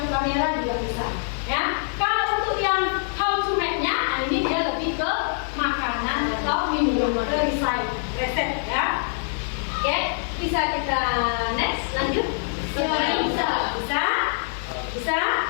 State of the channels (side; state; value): right; silent; digital silence